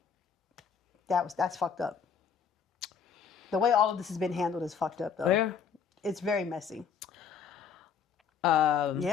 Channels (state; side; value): quieter; right; 6.9 dB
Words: that's fucked up. The way all of this has been handled is fucked up, though. Yeah. It's very messy.